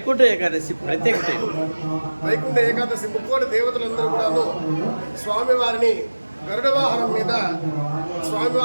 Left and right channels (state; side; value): inverted; both; correlation -1.00